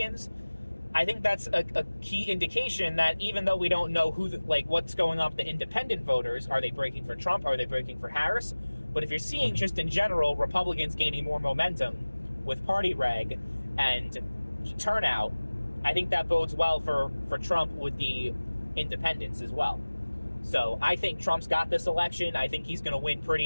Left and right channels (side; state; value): both; inverted; correlation -1.00